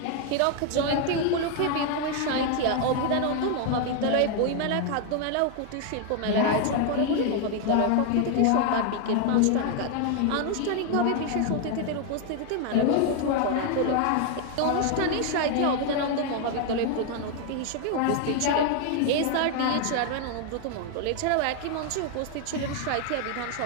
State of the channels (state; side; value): different; both; correlation 0.01